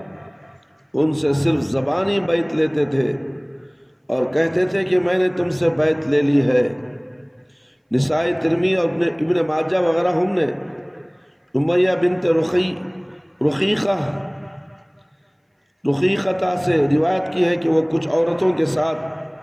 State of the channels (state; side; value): identical; both; correlation 1.00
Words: ان سے صرف زبانی بیعت لیتے تھے اور کہتے تھے کہ میں نے تم سے بیعت لے لی ہے۔ نسائی، ترمذی اور ابن ماجہ وغیرہ ہم نے امیہ بنت رقیقہ سے روایت کی ہے کہ وہ کچھ عورتوں کے